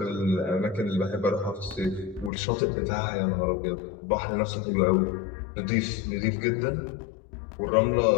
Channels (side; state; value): right; drops out; at 2.3 s